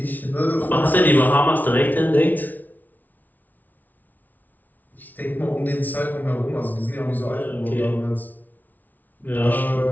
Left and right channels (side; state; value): right; late; 0.081 ms